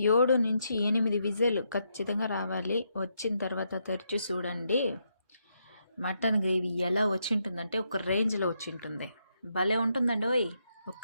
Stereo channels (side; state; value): both; inverted; correlation -0.79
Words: నుంచి 8 విజిల్ ఖచ్చితంగా రావాలి. వచ్చిన తర్వాత తెరిచి చూడండి, మటన్ గ్రేవీ ఎలా వచ్చి ఉంటుందంటే ఒక రేంజ్లో వచ్చి ఉంటుంది. భలే ఉంటుందండి ఓయ్.